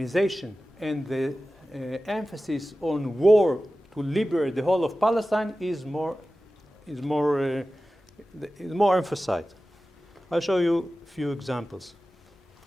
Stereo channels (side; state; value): both; normal; correlation 0.95